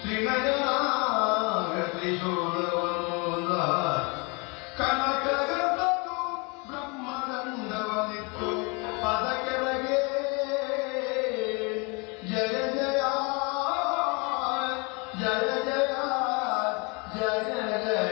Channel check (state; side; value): quieter; right; 30.8 dB